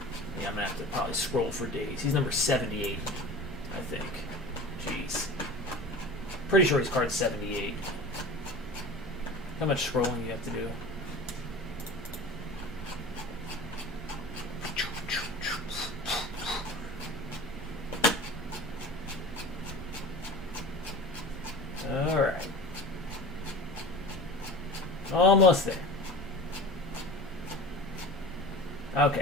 Yeah, I'm gonna have to probably scroll for days. He's number 78, I think. Jeez. Pretty sure his card's 78. How much scrolling you have to do? Almost there.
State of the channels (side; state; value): both; normal; correlation 0.37